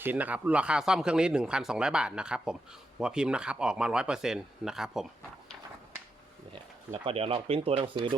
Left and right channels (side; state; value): both; normal; correlation 0.85